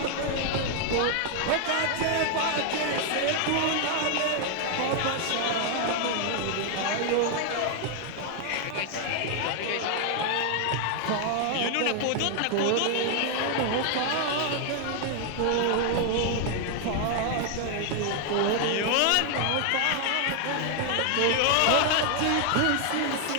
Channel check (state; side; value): different; both; correlation 0.00